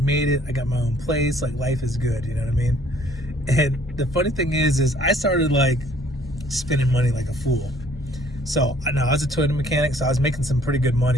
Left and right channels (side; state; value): both; normal; correlation 0.59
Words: it. I got my own place. Like, life is good. You know what I mean? And the funny thing is I started like spending money like a fool. So I was a Toyota mechanic, so I was making some pretty good